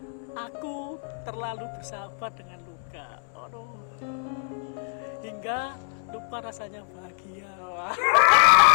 Aku terlalu bersahabat dengan luka. Aduh. Hingga lupa rasanya bahagia.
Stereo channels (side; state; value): right; silent; 61 dB below the other